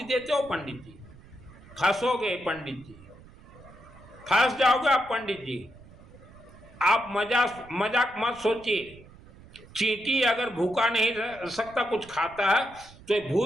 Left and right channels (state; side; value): noise; right; rumble, 21 dB below the sound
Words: देते हो पंडित जी। फंसोगे पंडित जी, फंस जाओगे आप पंडित जी। आप मजाक मत सोचिए। चींटी अगर भूखा नहीं रह सकता, कुछ खाता है, तो